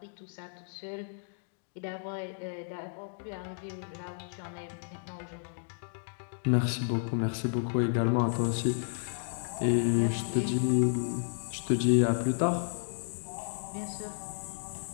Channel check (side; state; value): right; silent; digital silence